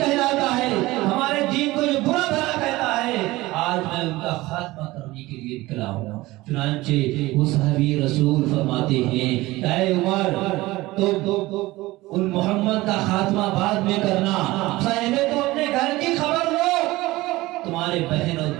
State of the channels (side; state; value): left; quieter; 19.2 dB